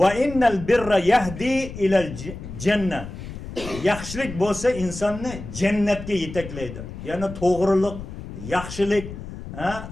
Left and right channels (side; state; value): left; noise; rumble, 11 dB below the sound